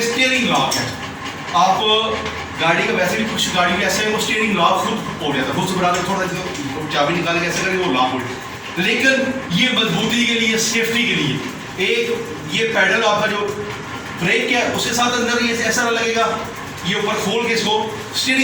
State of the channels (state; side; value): identical; both; correlation 1.00